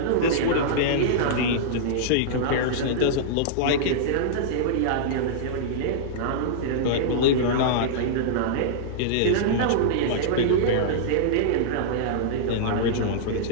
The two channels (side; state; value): both; different; correlation -0.02